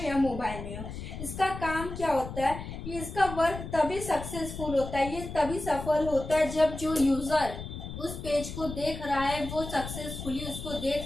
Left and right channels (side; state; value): left; noise; rumble, 9 dB below the sound